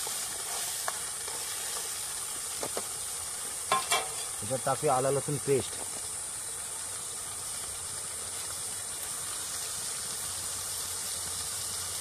त्याच्यात टाकूया आला लसूण पेस्ट.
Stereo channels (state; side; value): identical; both; correlation 1.00